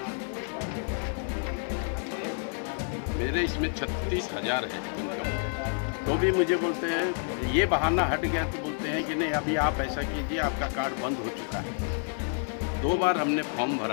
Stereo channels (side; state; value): right; silent; 56 dB below the other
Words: मेरे इसमें 36,000 है इनकम। तो भी मुझे बोलते हैं, ये बहाना हट गया तो बोलते हैं कि नहीं अभी आप ऐसा कीजिए, आपका कार्ड बंद हो चुका है। 2 बार हमने फॉर्म